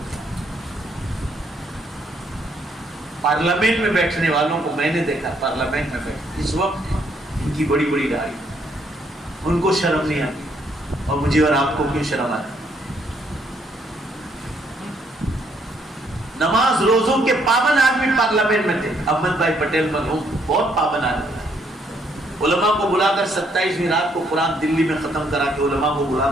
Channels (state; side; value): normal; both; correlation 0.70